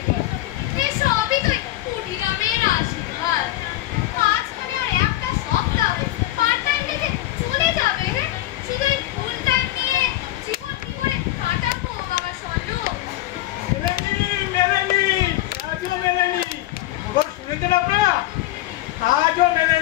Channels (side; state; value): right; quieter; 15.6 dB